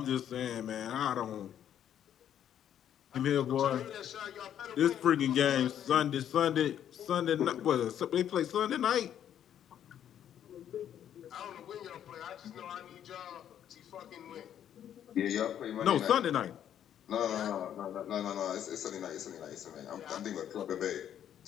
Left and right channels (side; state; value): right; quieter; 10.1 dB